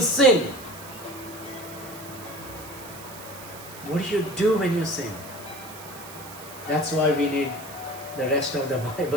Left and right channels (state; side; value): noise; right; hiss, 15 dB below the sound